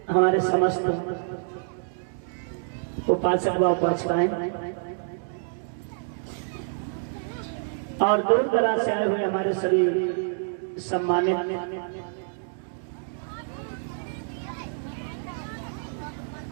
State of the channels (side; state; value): left; silent; digital silence